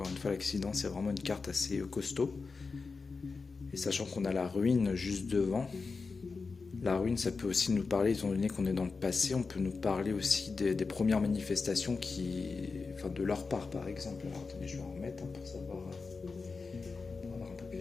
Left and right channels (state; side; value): quieter; right; 4.5 dB